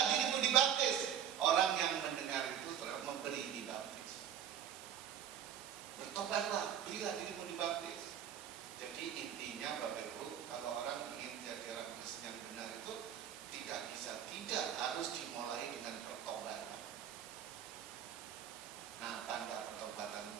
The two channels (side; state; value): left; quieter; 9.5 dB